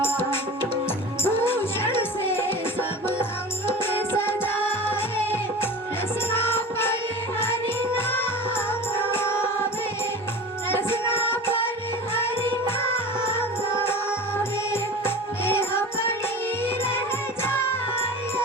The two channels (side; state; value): both; normal; correlation 0.35